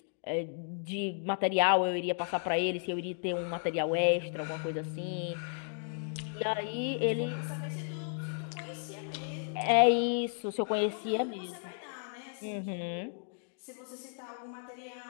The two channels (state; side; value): silent; right; digital silence